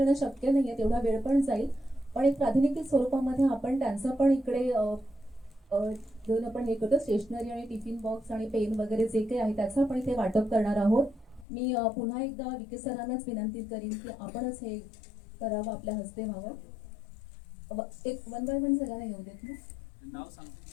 शक्य नाहीये, तेवढा वेळ पण जाईल. पण एक प्रातिनिधिक स्वरूपामध्ये आपण त्यांचं पण इकडे घेऊन आपण हे करतो. स्टेशनरी आणि टिफिन बॉक्स आणि पेन वगैरे जे काही आहे त्याचं आपण इथे वाटप करणार आहोत. मी पुन्हा एकदा विके सरांनाच विनंती करीन की आपणच हे करावं, आपल्या हस्ते व्हावं. एक 1 बाय 1 सगळ्यांना येऊ देत ना. नाव सांगतो.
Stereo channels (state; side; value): drops out; right; at 11.5 s